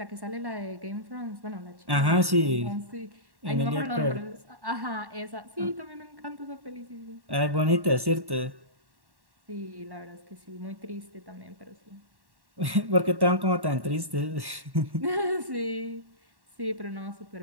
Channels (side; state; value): left; late; 1.1 ms